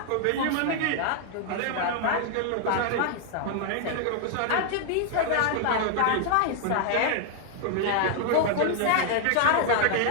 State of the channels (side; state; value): both; different; correlation 0.00